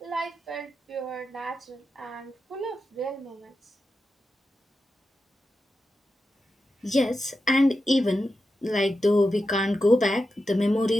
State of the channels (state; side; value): normal; both; correlation 0.90